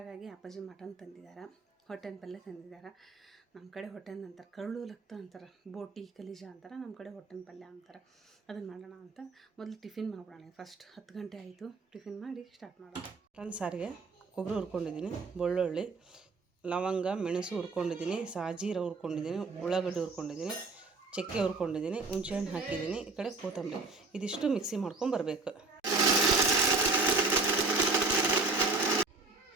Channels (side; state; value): left; quieter; 3.7 dB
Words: ಅಪ್ಪಾಜಿ ಮಟನ್ ತಂದಿದ್ದಾರೆ, ಹೊಟ್ಟೆನ ಪಲ್ಯ ತಂದಿದ್ದಾರೆ. ನಮ್ಮ ಕಡೆ ಹೊಟ್ಟೆನ ಅಂತಾರೆ, ಕರಳು ಲಕ್ತ ಅಂತಾರೆ, ಬೋಟಿ ಕಲೀಜ ಅಂತಾರೆ. ನಮ್ಮ ಕಡೆ ಹೊಟ್ಟೆನ ಪಲ್ಯ ಅಂತಾರೆ. ಅದನ್ನು ಮಾಡೋಣ ಅಂತ ಮೊದಲು ಟಿಫಿನ್ ಮಾಡ್ಬಿಡೋಣ. ಫಸ್ಟ್ 10 ಗಂಟೆ ಆಯಿತು, ಟಿಫಿನ್ ಮಾಡಿ ಸ್ಟಾರ್ಟ್ ಮಾಡೋಣ. ಮಟನ್ ಸಾರಿಗೆ ಕೊಬ್ಬರಿ ಹುರ್ಕೊಂಡಿದ್ದೀನಿ, ಬೆಳ್ಳುಳ್ಳಿ, ಲವಂಗ, ಮೆಣಸು ಹುರ್ಕೊಂಡಿದ್ದೀನಿ, ಸಾಜೀರ ಹುರ್ಕೊಂಡಿದ್ದೀನಿ, ಉಳ್ಳಾಗಡ್ಡಿ ಹುರ್ಕೊಂಡಿದ್ದೀನಿ, ಚಕ್ಕೆ ಹುರ್ಕೊಂಡಿದ್ದೀನಿ, ಹುಣಸೆಹಣ್ಣು ಹಾಕಿದ್ದೀನಿ. ಈ ಕಡೆ ಕೊತ್ತಂಬರಿ, ಇದಿಷ್ಟು ಮಿಕ್ಸಿ ಮಾಡ್ಕೊಂಬರ್ಬೇಕು.